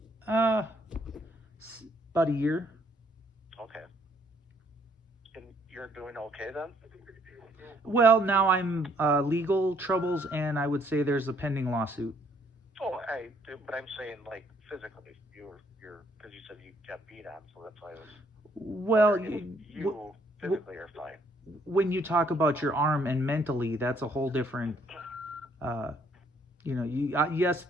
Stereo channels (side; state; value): both; normal; correlation 0.66